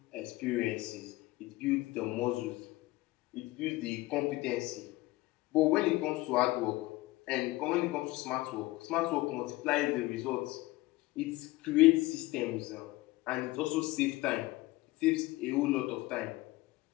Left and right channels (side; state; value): right; quieter; 19.5 dB